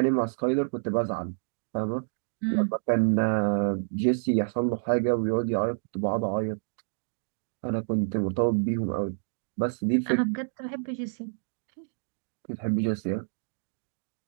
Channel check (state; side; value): silent; left; digital silence